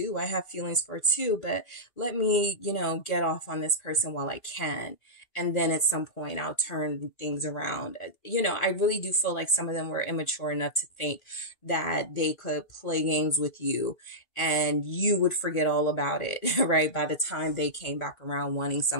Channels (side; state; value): right; late; 2.5 ms